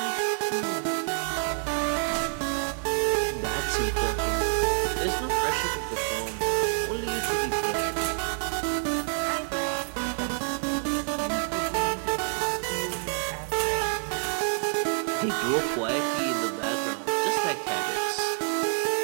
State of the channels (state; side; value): silent; left; 60 dB below the other